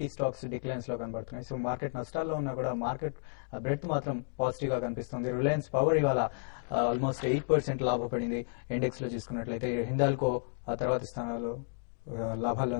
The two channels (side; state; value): right; silent; 56 dB below the other